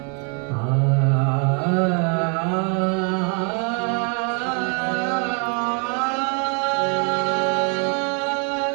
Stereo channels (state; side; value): quieter; left; 38.3 dB